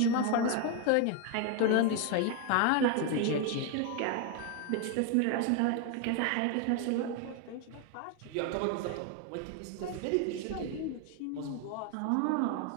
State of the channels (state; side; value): different; both; correlation 0.01